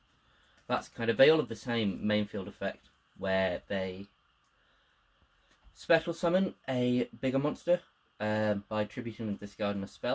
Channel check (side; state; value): both; identical; correlation 1.00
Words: That's kind of, they all have the same main field effect, where they special summon a bigger monster by tributing and discarding a